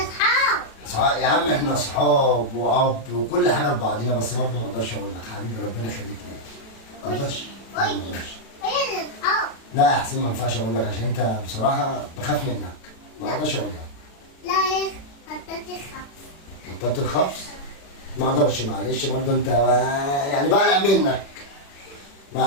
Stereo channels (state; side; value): late; right; 36 ms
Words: يا عم احنا اصحاب واب وكل حاجه لبعضينا، بس برضه ما اقدرش اقول لك. حبيبي ربنا يخليك ليا. ما اقدرش. لا يا حسين ما ينفعش اقول لك، عشان انت بصراحه بخاف منك. ما اقدرش اقول لك. لا يا بطلت الخبز. بطلت الخبز؟ ما اقدرش، معلش برضه انت يعني بقلق منك.